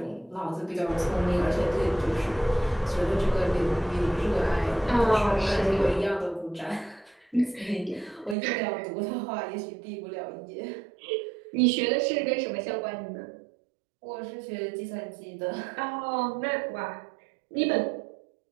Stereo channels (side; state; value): left; drops out; at 8.3 s